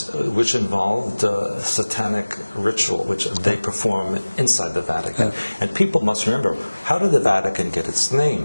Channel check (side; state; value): both; inverted; correlation -1.00